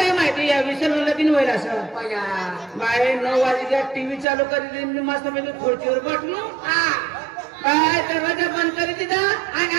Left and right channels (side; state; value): left; drops out; at 4.2 s